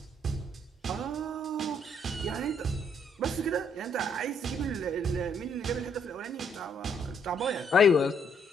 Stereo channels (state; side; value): normal; both; correlation 0.69